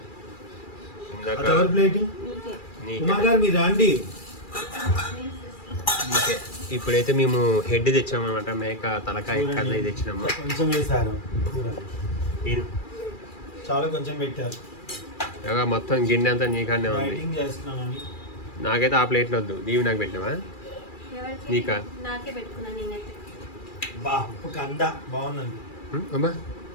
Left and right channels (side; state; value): right; late; 2.4 ms